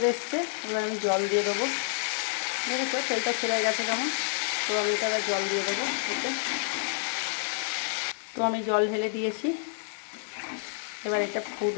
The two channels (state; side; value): silent; right; digital silence